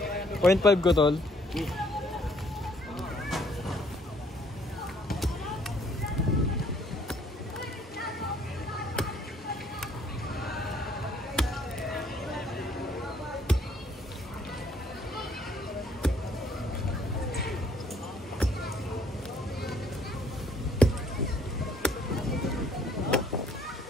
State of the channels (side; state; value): both; normal; correlation 0.64